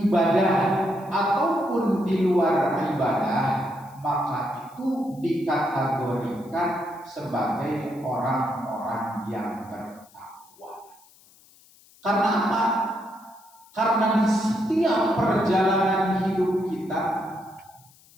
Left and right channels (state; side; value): noise; left; hiss, 27 dB below the sound